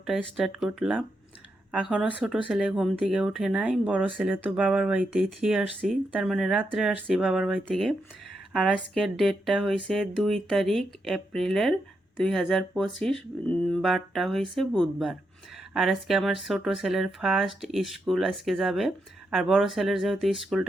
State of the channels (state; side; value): normal; both; correlation 0.83